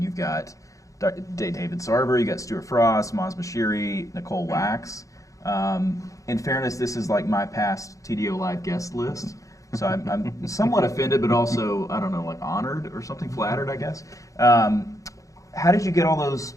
you've got David Sarver, you got Stuart Frost, Maz Bashiri, Nicole Wax. In fairness, this is like my past TDO Live guest list. So I'm somewhat offended, but also, I don't know, like honored or something, flattered, I guess. How did you get all those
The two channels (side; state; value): right; late; 0.16 ms